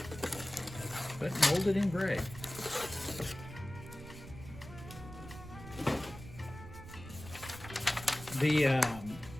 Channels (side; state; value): right; noise; rumble, 14 dB below the sound